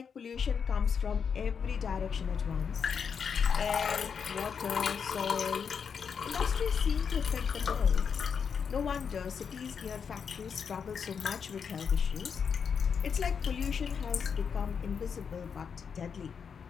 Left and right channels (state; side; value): quieter; right; 6.6 dB